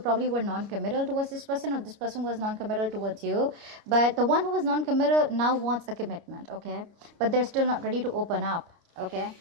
were non-committal towards this person, or this person was non-committal towards you. But the one who was non-committal now wants a commitment. Okay, but they're still not ready to open up. Okay,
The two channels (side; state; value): left; late; 29 ms